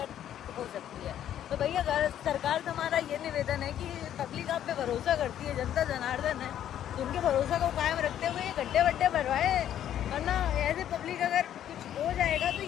हो सकती है। तो भैया सरकार से हमारा ये निवेदन है कि पब्लिक आप पे भरोसा करती है, जनता जनार्दन है, तो उनके भरोसा को कायम रखते हुए ये गड्ढे वड्ढे भरवाए। वरना ऐसे पब्लिक अगर कुछ हो जाएगा तो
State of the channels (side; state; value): right; quieter; 10.8 dB